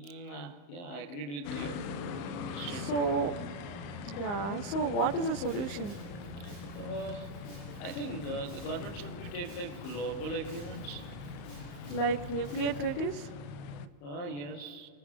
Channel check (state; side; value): late; right; 35 ms